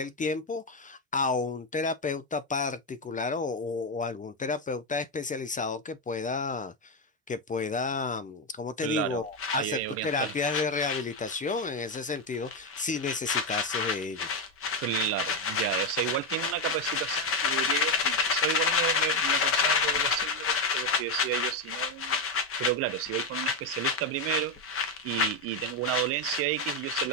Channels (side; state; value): both; normal; correlation 0.08